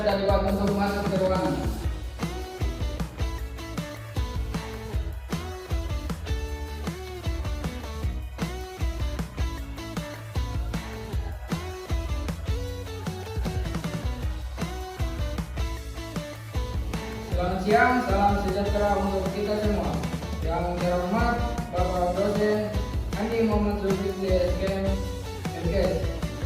debat untuk masuk ke ruangan. Selamat siang, salam sejahtera untuk kita semua. Yang terhormat Bapak Dosen Andi Muhammad Zulkifli SKM MKes,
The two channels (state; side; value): identical; both; correlation 1.00